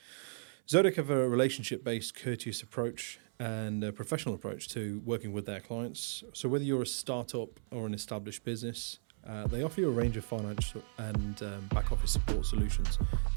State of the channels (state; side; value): silent; left; 54 dB below the other